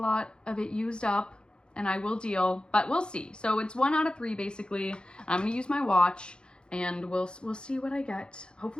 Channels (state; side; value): late; right; 0.051 ms